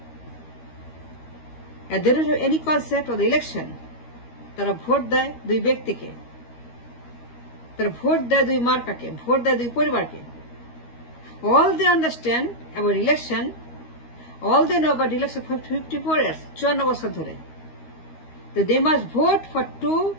And they don't have any concept of the election. তারা vote দেয় দুই ব্যক্তিকে, তারা ভোট দেয় দুই মার্কাকে, ভোট দেয় দুই পরিবারকে। All they understand about election, all they know about election for 54 years, 54 বছর ধরে, that they must vote for two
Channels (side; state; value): right; late; 13 ms